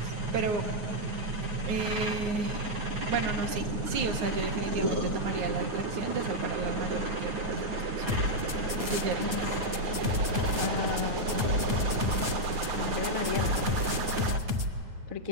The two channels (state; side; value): late; left; 9.3 ms